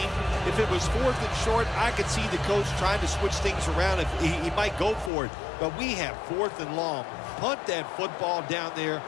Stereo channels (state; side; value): drops out; right; at 5.1 s